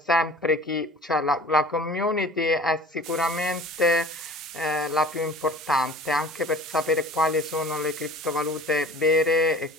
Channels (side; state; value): both; normal; correlation 0.44